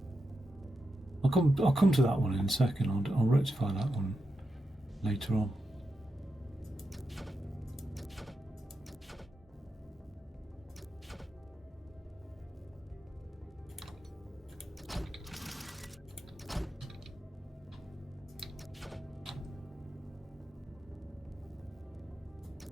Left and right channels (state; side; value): normal; both; correlation 0.87